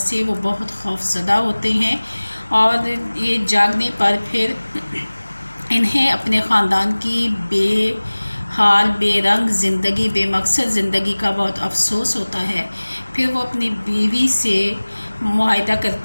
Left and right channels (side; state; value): both; inverted; correlation -1.00